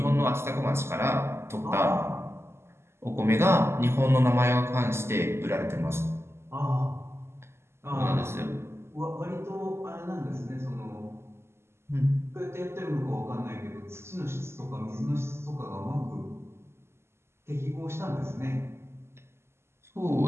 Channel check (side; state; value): left; late; 0.12 ms